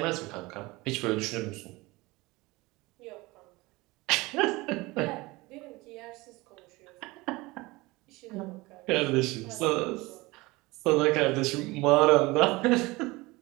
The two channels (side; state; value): left; quieter; 22.1 dB